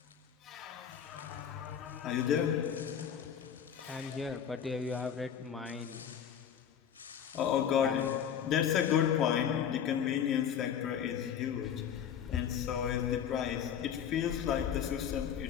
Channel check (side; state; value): right; quieter; 8.7 dB